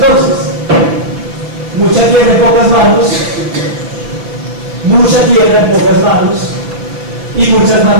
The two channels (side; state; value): left; late; 5.8 ms